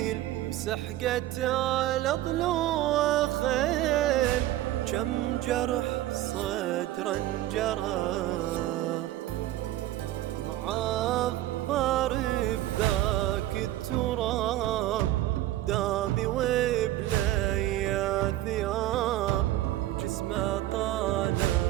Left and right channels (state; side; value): quieter; left; 14.8 dB